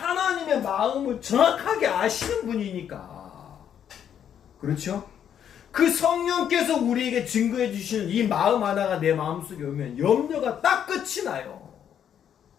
마음을 정확하게 아시는 분이니까. 그렇죠? 그 성령께서 우리에게 증거해 주시는 이 마음 하나가 내 마음속에 오면 염려가 딱 끝이 나요.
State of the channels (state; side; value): quieter; right; 9.1 dB